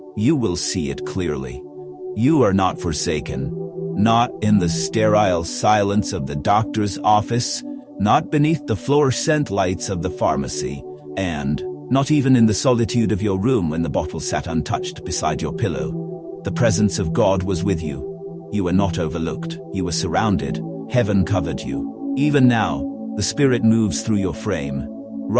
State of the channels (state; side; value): identical; both; correlation 1.00